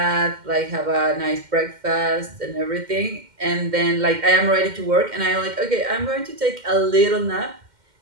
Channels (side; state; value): left; late; 2.1 ms